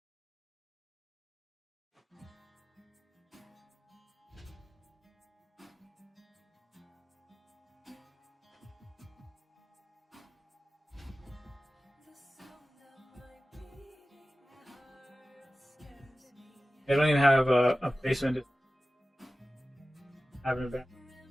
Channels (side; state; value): both; normal; correlation 0.96